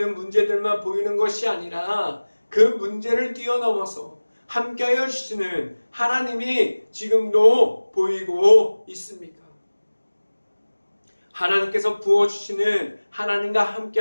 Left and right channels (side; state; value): both; inverted; correlation -1.00